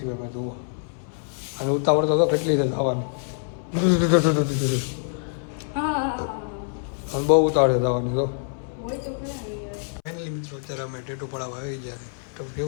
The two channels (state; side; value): silent; right; 62 dB below the other